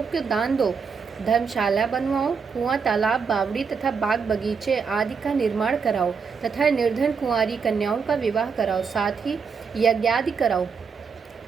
को दान दो, धर्मशाला बनवाओ, कुआं, तालाब, बावड़ी तथा बाग बगीचे आदि का निर्माण कराओ तथा निर्धन कुंवारी कन्याओं का विवाह कराओ, साथ ही यज्ञादि कराओ।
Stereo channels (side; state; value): left; quieter; 5.7 dB